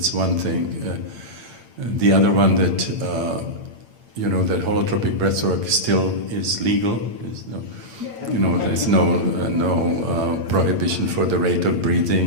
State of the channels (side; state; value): left; late; 8.8 ms